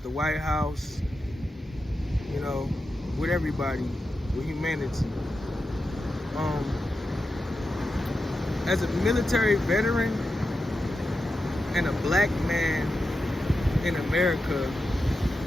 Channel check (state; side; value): normal; both; correlation 0.90